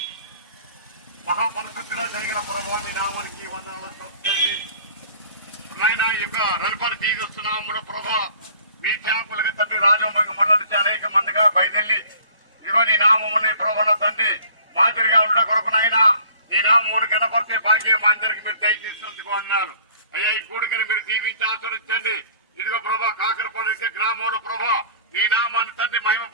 మహాపరిశుద్ధుడా జయగల ప్రభువాని నామానికి వందనాలు చెప్తండి. అమ్మాయిన యొక్క రవిపరి తీరుస్తున్నాము ప్రభా. మీ సేవకులుగా తండ్రి రాజవంగ మండలి నుంచి అనేక మందిగా బయలుదేరి ఇదిగో నీ నామముని ప్రభాన తండ్రి మాదిరిగా ఉండ కొరకునైనా నీ నామూరు కనపడితే భాగ్యం మా అందరికి మీరు దయచేసినందుకు అన్నారు. అయ్యా, ఈ కూడికని మీరు దీవించి ఆచరించండి. ఇదిగో ప్రభా, కాకరపాడు గ్రామంలో ప్రభా నీ నామాన్ని తండ్రి మహిమ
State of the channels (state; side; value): inverted; both; correlation -0.50